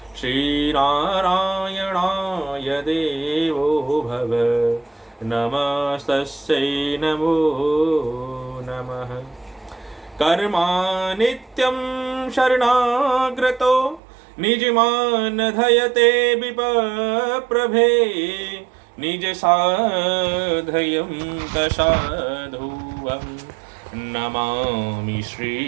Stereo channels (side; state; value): left; drops out; at 14.0 s